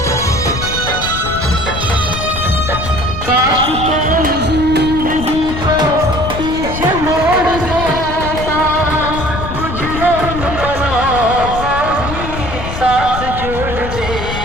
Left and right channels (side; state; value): left; noise; rumble, 7 dB below the sound